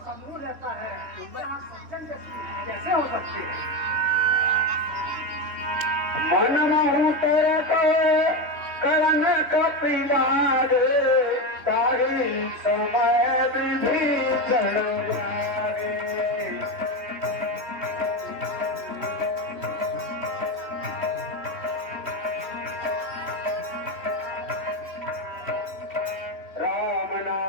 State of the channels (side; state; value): left; late; 3.4 ms